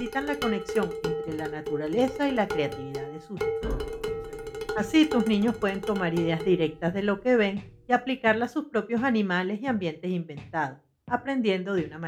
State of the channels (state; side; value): identical; both; correlation 1.00